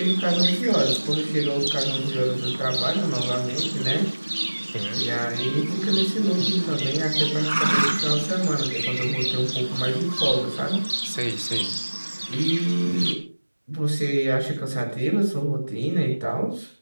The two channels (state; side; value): inverted; both; correlation -1.00